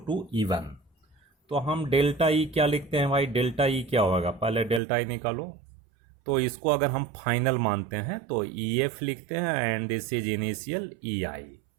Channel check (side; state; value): left; drops out; at 4.8 s